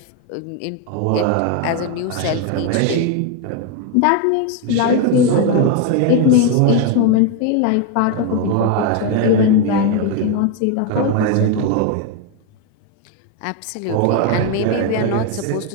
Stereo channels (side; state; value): both; different; correlation 0.02